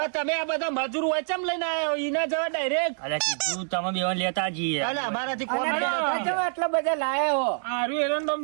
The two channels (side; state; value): left; silent; 59 dB below the other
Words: તમે આ બધા મજૂર હોય ચમ લઈને આવ્યો ઈના જવા ડાયરેક્ટ અરે કીધું તમે બેવન લેતા જઈએ અલે અમારાથી કોમ આટલા બધા લાયા હો આરું એરંડો